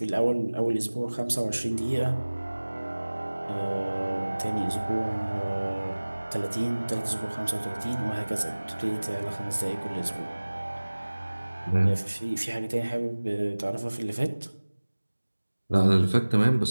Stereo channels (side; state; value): both; inverted; correlation -1.00